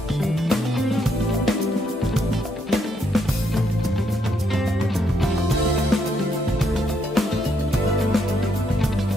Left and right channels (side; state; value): both; normal; correlation 0.75